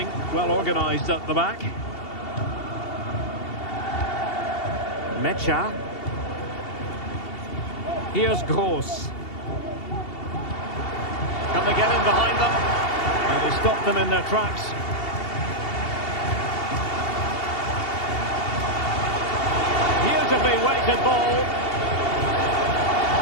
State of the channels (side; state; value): right; late; 2.7 ms